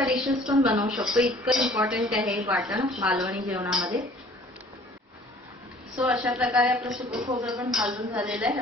डिशेस पण बनवू शकतो, इतकं इम्पॉर्टंट आहे हे वाटण मालवणी जेवणामध्ये। सो अशा प्रकारे आपलं सुकं खोबरं पण भाजून झालेलं आहे।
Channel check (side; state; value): both; normal; correlation 0.52